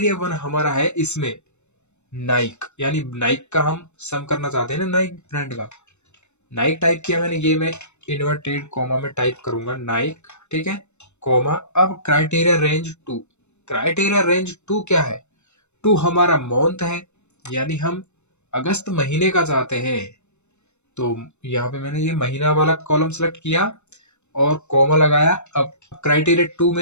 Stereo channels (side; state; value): right; late; 0.82 ms